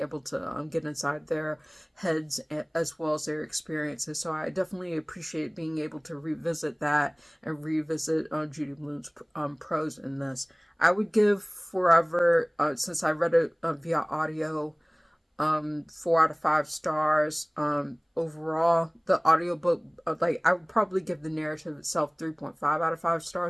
to get inside their heads as well as their experiences. So I definitely appreciate being able to revisit that and revisit Judy Blume's prose in this. I would give Forever, since I read it via audio, 4 out of 5 stars. Overall, the audiobook, like I would probably give the narrative itself 3.5 out of 5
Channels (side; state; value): both; identical; correlation 1.00